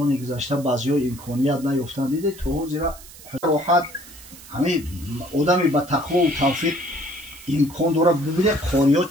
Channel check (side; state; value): right; noise; hiss, 19 dB below the sound